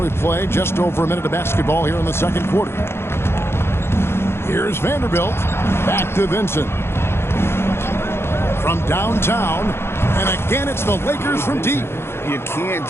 we play just over a minute of basketball here in the second quarter. Here's Vanderbilt. Back to Vincent. From downtown. And again, it's the Lakers from deep. You can't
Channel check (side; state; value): right; late; 0.12 ms